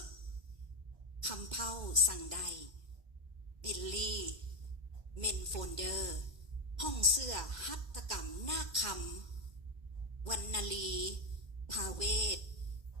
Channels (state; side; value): late; left; 2.1 ms